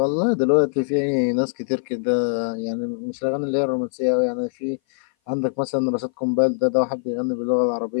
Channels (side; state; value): right; silent; 58 dB below the other